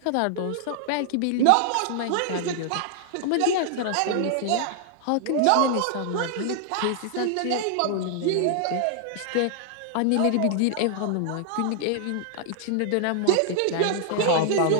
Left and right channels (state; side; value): different; both; correlation 0.00